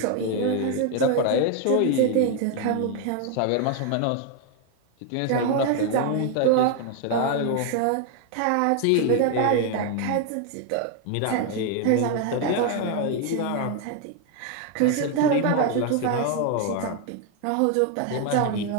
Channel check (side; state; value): both; different; correlation 0.01